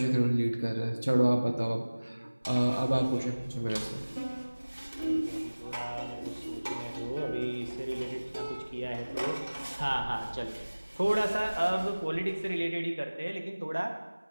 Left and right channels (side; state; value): both; inverted; correlation -1.00